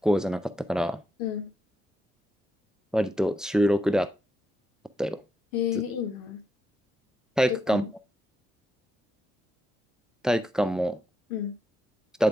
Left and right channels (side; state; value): both; normal; correlation 0.82